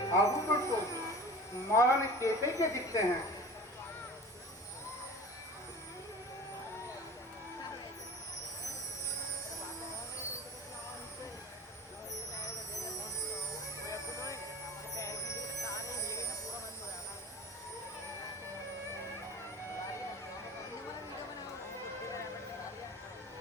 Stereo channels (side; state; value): both; normal; correlation 0.39